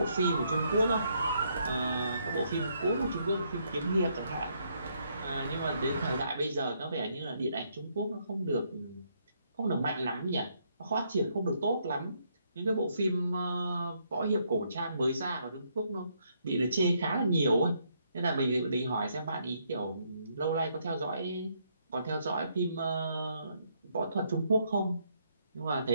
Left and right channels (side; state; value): both; inverted; correlation -0.73